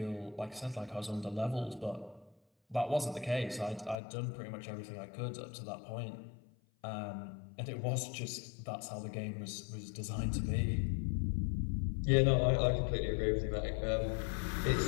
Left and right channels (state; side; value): drops out; right; at 4.0 s